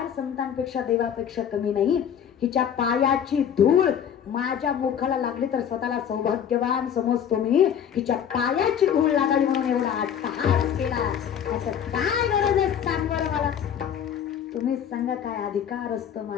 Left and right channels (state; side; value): quieter; right; 8.6 dB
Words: संतांपेक्षा देवापेक्षा कमी नाही. हिच्या पायाची धूळ माझ्या मुखाला लागली तर स्वतःला सौभाग्यवान समजतो मी. हिच्या पायाची धूळ लागावी म्हणून एवढा अट्टहास केला. असं काय गरज आहे सांग बरं मला. तुम्हीच सांगा काय अधिकार असतो